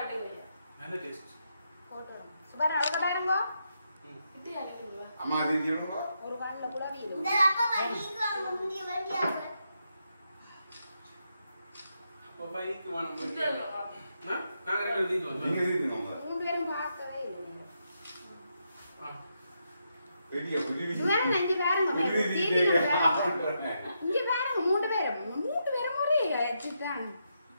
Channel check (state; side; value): inverted; both; correlation -0.82